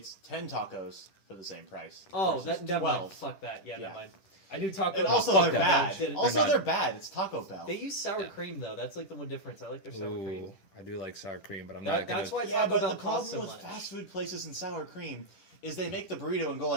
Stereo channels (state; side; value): late; right; 10 ms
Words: 10 tacos for the same price. Oh, versus that never mind. 12. Fuck that. Yeah, Yeah. never mind. I knew Taco And Bell. also fuck they're that. bad. They're Also not. they're bad. It's Taco Bell. They use sour Yeah. cream though. That's like the one difference. I like their sour cream. Ooh, I do like sour cream, but I'm That- not gonna. that's why Yeah, Taco but Bell the problem costs so with much. fast food places and sour cream is they make the burrito and go